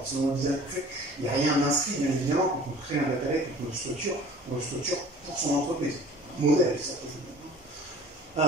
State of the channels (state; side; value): normal; both; correlation 0.46